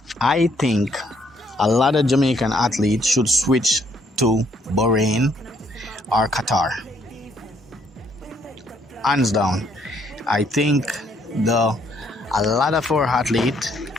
I think a lot of Jamaican athletes should switch to Bahrain or Qatar. Hands down. I think the a lot of our athletes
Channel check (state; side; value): normal; both; correlation 0.68